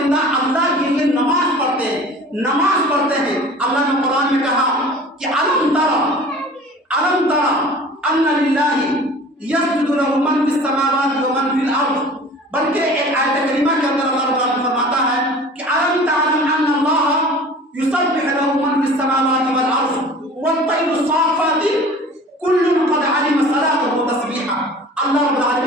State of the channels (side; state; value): both; normal; correlation 0.43